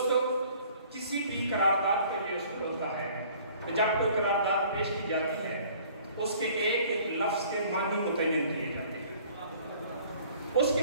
کسی بھی قرارداد کا یہ اصول ہوتا ہے کہ جب کوئی قرارداد پیش کی جاتی ہے اس کے ایک ایک لفظ کے معنی متعین کیے جاتے ہیں اس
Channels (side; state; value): both; inverted; correlation -0.53